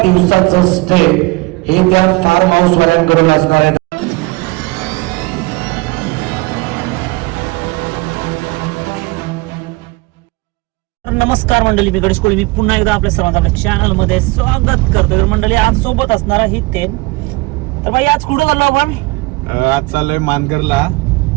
दिवसाचं स्टे हे त्या फार्म हाऊस वाल्यांकडून असणार आहे. नमस्कार मंडळी, मी गणेश कोळी. मी पुन्हा एकदा आपल्या सर्वांचं आपल्या चॅनल मध्ये स्वागत करतो. तर मंडळी, आज सोबत असणार ही थेम. तर भाई आज कुठं चाललो आपण? आज चाललोय मानगरला.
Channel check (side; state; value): left; quieter; 24.5 dB